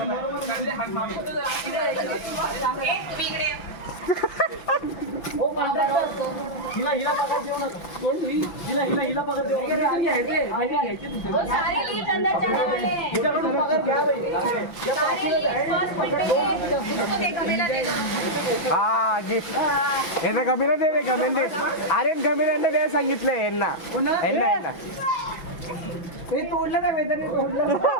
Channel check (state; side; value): late; right; 5.9 ms